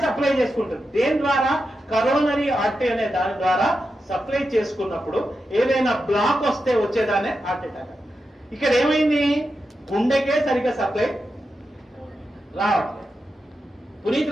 సప్లై చేసుకుంటుంది. దేని ద్వారా? కరోనరీ ఆర్టరీ అనే దాని ద్వారా సప్లై చేసుకున్నప్పుడు ఏదైనా బ్లాక్ వస్తే వచ్చేదానే హార్ట్ అటాక్. ఇక్కడ ఏమైంది? గుండెకే సరిగ్గా సప్లై రావట్లేదు.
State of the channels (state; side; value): normal; both; correlation 0.89